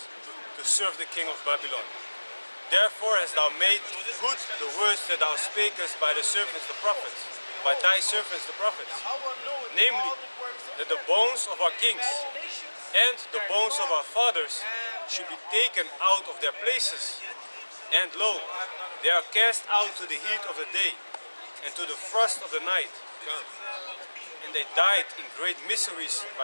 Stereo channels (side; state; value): both; inverted; correlation -1.00